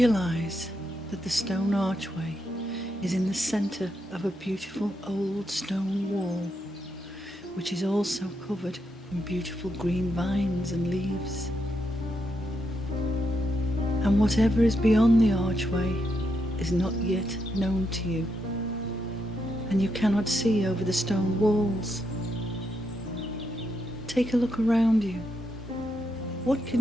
that the stone archway is in the center of a beautiful old stone wall, which is also covered in beautiful green vines and leaves. And whatever is beyond the archway is not yet known to you, and you cannot see over the stone walls. Take a look around you. What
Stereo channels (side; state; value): both; normal; correlation 0.81